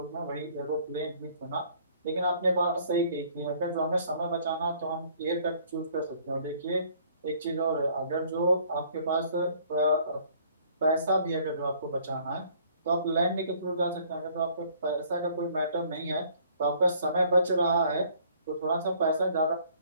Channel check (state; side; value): inverted; both; correlation -0.59